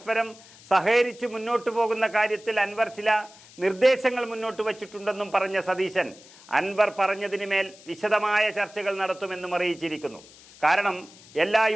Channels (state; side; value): noise; left; hiss, 22 dB below the sound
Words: സഹകരിച്ച് മുന്നോട്ടു പോകുന്ന കാര്യത്തിൽ അൻവർ ചില നിർദ്ദേശങ്ങൾ മുന്നോട്ട് വച്ചിട്ടുണ്ടെന്നും പറഞ്ഞ സതീശൻ അൻവർ പറഞ്ഞതിന് മേൽ വിശദമായ ചർച്ചകൾ നടത്തുമെന്നും അറിയിച്ചിരിക്കുന്നു. കാരണം എല്ലാ